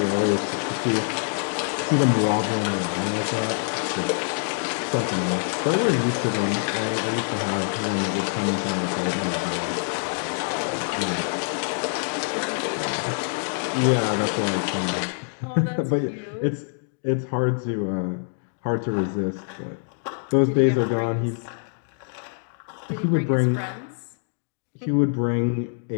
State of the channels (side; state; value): right; silent; digital silence